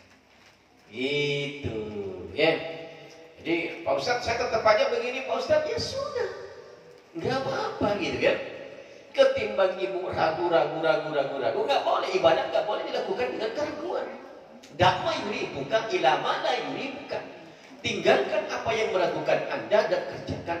Itu ya. Jadi Pak Ustadz saya tetap aja begini Pak Ustadz, ya sudah, nggak apa-apa gitu kan. Ketimbang ibu ragu, nggak boleh ibadah, nggak boleh dilakukan dengan keraguan. Dakma yuri bukan, ilama la yuri bukan. Tinggalkan apa yang meragukan anda dan kerjakan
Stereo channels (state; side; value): identical; both; correlation 1.00